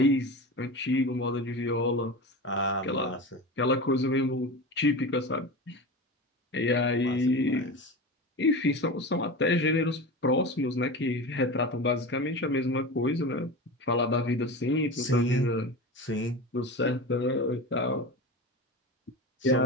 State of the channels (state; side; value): normal; both; correlation 0.27